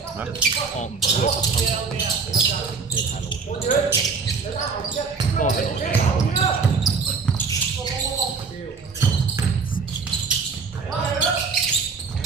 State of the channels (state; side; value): quieter; left; 5.0 dB